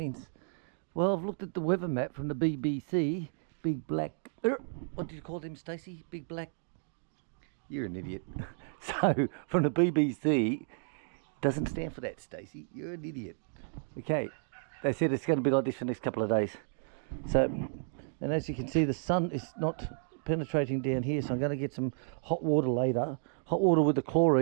Well, I've looked at the weather map from the BBC. Big black... what did you call him, Stacey? Big black... You're an idiot. So, from the BBC, doesn't stand for that, Stacey. You're an idiot. Okay, they said it's going to be like this for the next couple of days. So, and as you can see, the sun is not penetrating down here, so I'm going to get some hot water later. Hot water with the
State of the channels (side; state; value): left; silent; digital silence